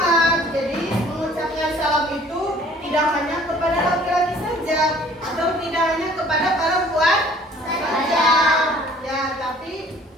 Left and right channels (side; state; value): both; normal; correlation 0.54